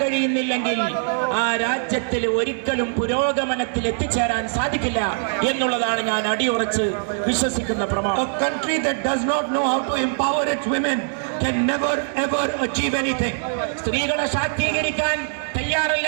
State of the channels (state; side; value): silent; left; digital silence